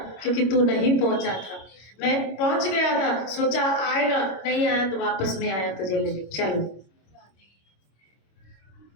क्योंकि तू नहीं पहुंचा था, मैं पहुंच गया था, सोचा आएगा, नहीं आया तो वापस में आया तुझे लेने। चल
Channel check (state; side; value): late; right; 25 ms